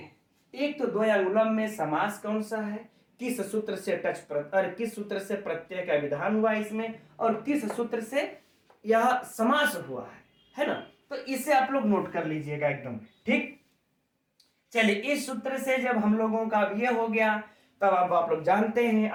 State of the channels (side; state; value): both; identical; correlation 1.00